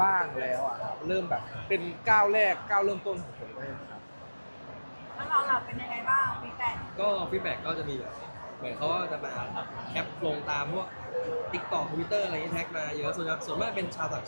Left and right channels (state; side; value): inverted; both; correlation -1.00